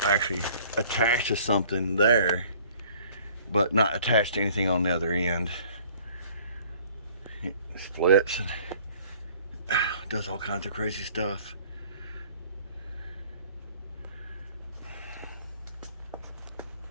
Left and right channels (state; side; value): inverted; both; correlation -0.54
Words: actually attached to something there, but not attached to anything on the other end. It splits and does all kinds of crazy stuff.